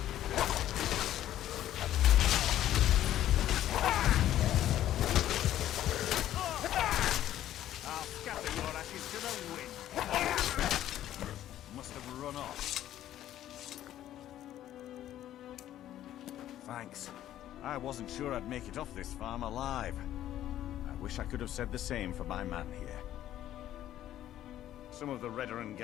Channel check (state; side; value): quieter; right; 12.4 dB